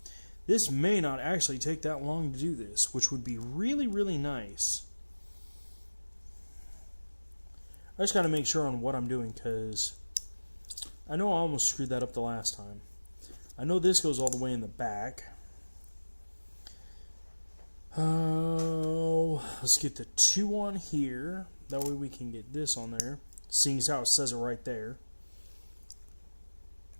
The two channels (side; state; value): both; inverted; correlation -1.00